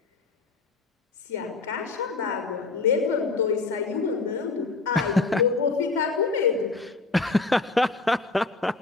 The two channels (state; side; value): quieter; right; 3.8 dB